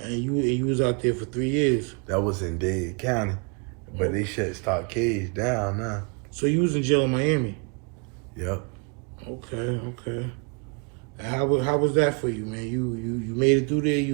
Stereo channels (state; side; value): quieter; left; 34.5 dB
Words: you was out there for 3 years. That was in Dade County. But they shut stock cage down now. So you was in jail in Miami? Yep. Okay. And how was that for you, man? You made it through there.